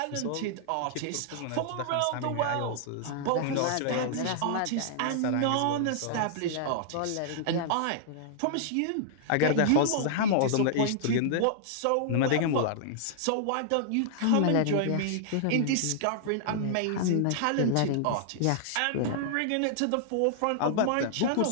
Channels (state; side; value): different; both; correlation -0.01